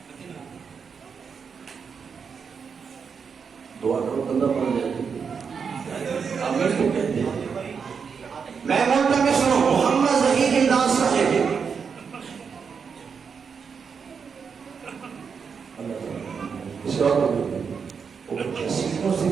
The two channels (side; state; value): left; quieter; 6.1 dB